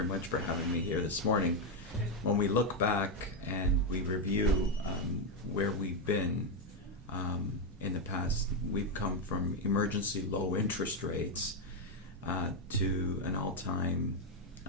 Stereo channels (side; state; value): both; normal; correlation 0.04